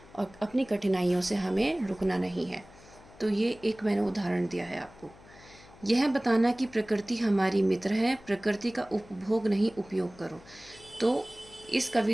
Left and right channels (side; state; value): left; noise; hum, 23 dB below the sound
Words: और अपनी कठिनाइयों से हमें रुकना नहीं है। तो ये एक मैंने उदाहरण दिया है आपको। यह बताना कि प्रकृति हमारी मित्र है, प्रकृति का उपभोग नहीं उपयोग करो। तो इस